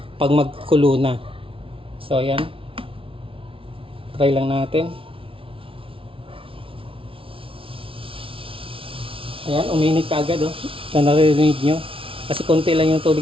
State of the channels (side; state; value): left; late; 0.26 ms